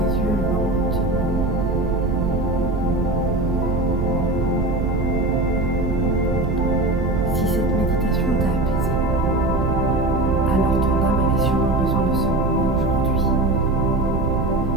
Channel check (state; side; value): noise; right; rumble, 1 dB below the sound